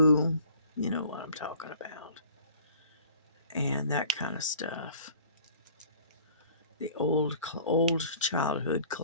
you know what I'm talking about, and that kind of stuff. The old childhood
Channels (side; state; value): both; inverted; correlation -0.50